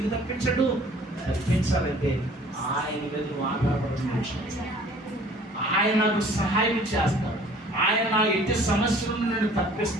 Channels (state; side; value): normal; both; correlation 0.52